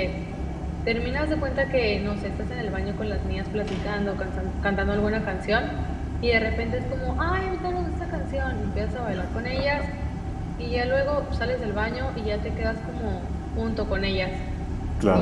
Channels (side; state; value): both; identical; correlation 1.00